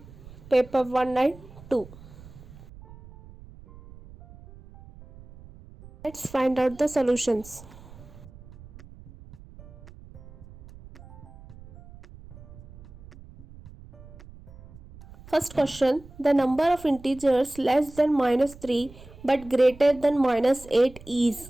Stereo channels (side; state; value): right; noise; rumble, 19 dB below the sound